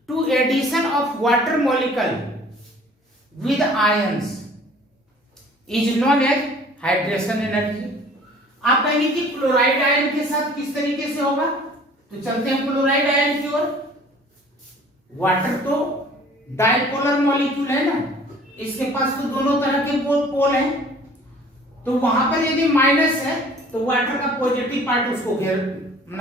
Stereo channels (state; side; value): normal; both; correlation 0.51